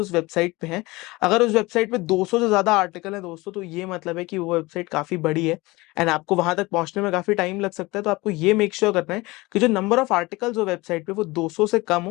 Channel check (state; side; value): quieter; right; 22.0 dB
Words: वेबसाइट पे हैं। अगर उस वेबसाइट पे 200 से ज्यादा आर्टिकल है दोस्तों, तो ये मतलब है कि वो वेबसाइट काफी बड़ी है एंड आपको वहां तक पहुंचने में काफी टाइम लग सकता है। तो आपको ये मेक श्योर करना है कि जो नंबर ऑफ आर्टिकल्स हो वेबसाइट पे वो 200 से कम